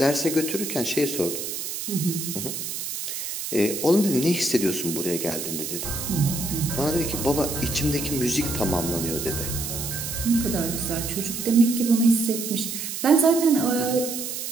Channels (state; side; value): noise; right; hiss, 5 dB below the sound